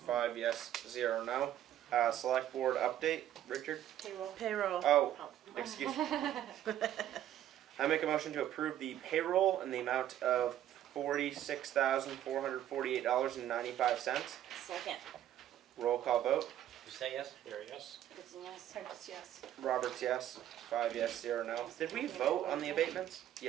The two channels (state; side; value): quieter; left; 11.8 dB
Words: yes, 0 no. Select board update. Richard? Payroll. Payroll. Oh, excuse me. I make a motion to approve the payroll in the amount of $46,448.95. Second. Roll call vote. Did you say yes? Barry, yes? Goodson, yes. Prentice, yes. Roberts, yes. 5 yes, 0 no. Did we vote on the abatements?